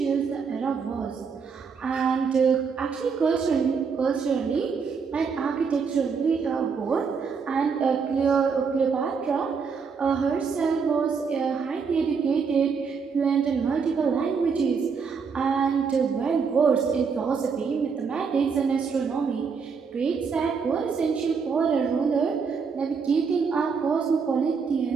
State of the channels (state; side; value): quieter; left; 5.7 dB